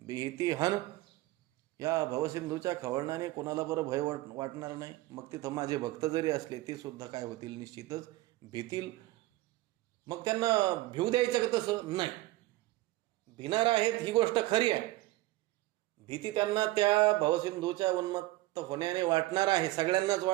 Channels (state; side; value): quieter; left; 18.1 dB